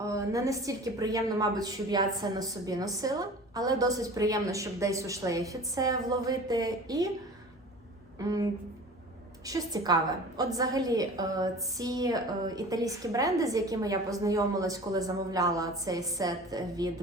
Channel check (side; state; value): both; normal; correlation 0.40